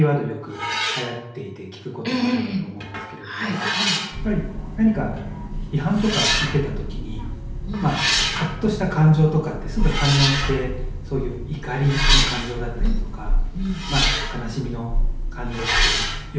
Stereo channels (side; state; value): both; identical; correlation 1.00